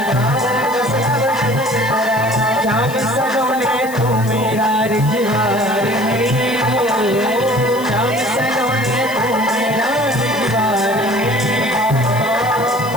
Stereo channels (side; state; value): left; noise; hiss, 15 dB below the sound